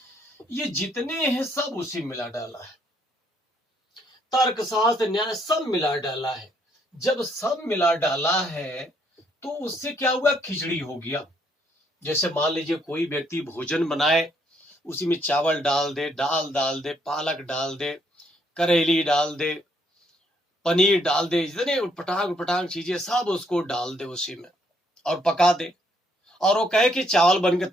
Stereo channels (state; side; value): normal; both; correlation 0.70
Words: ये जितने हैं सब उसी मिला डाला है। तर्क शास्त्र, न्याय, सब मिला डाला है। जब सब मिला डाला है तो उससे क्या हुआ, खिचड़ी हो गया। जैसे मान लीजिए कोई व्यक्ति भोजन बनाए, उसी में चावल डाल दे, दाल डाल दे, पालक डाल दे, करेली डाल दे, पनीर डाल दे, जितने उटपटांग उटपटांग चीजें सब उसको डाल दे उसी में और पका दे, और वो कहे कि चावल बन के